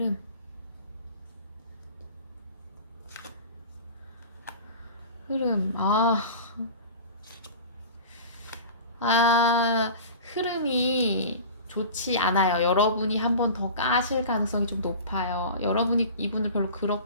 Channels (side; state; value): both; inverted; correlation -0.37